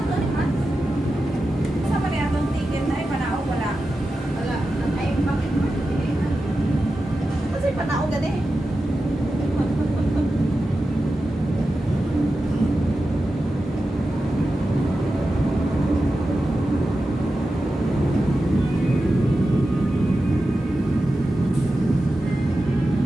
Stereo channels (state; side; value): normal; both; correlation 0.92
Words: Sa pa niya itong ticket na ay panao wala. Wala. Ay, bakit mo? Kasi panao gani.